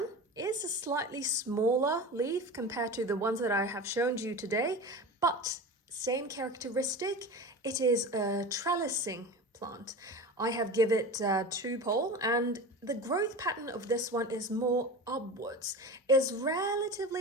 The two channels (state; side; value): normal; both; correlation 0.30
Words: is a slightly smaller leaf compared to the ones that I have shown you today, but same characteristic. It is a trellising plant. I have given it 2 pole, and the growth pattern of this one is more upwards. It's